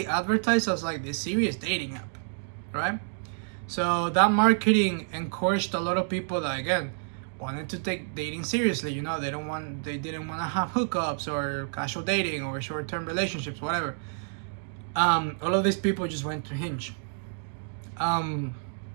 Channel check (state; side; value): silent; left; digital silence